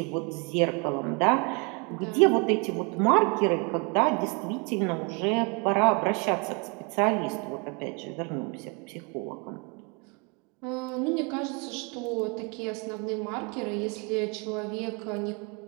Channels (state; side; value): quieter; left; 32.1 dB